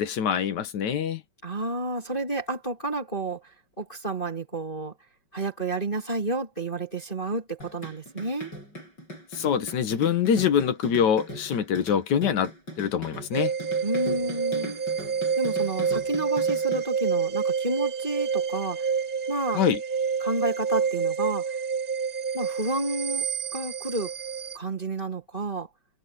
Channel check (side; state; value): right; late; 5.2 ms